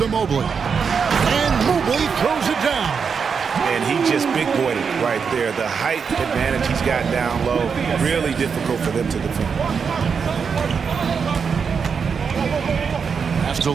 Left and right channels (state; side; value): quieter; left; 6.1 dB